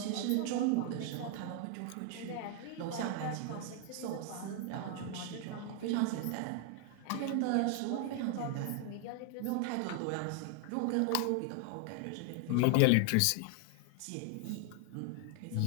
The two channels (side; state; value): both; different; correlation 0.00